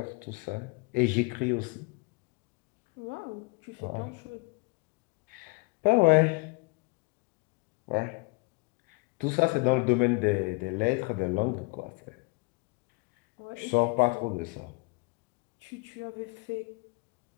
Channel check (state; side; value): quieter; right; 28.6 dB